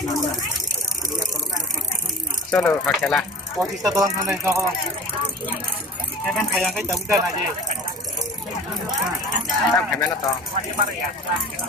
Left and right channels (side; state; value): both; normal; correlation 0.39